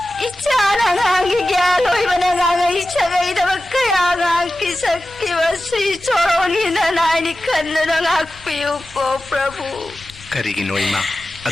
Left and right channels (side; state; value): left; noise; rumble, 23 dB below the sound